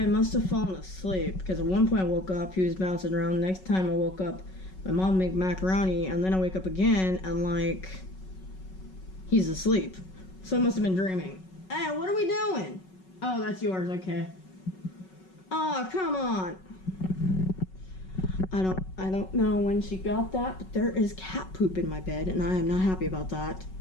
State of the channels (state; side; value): late; right; 5.4 ms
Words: must have fallen asleep because at one point I woke up, he was bouncing around. The next time I woke up, my mom made macaroni, and then I wake up again and like he's asleep. So I must have been dreaming. Hey, what are we doing? Oh, that's yours, okay. Oh, come on. I don't know when she got that, but there is cat poop in my bed, and I am not happy about that.